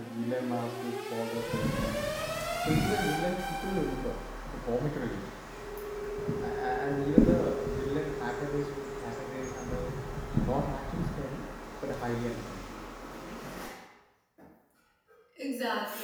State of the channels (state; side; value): identical; both; correlation 1.00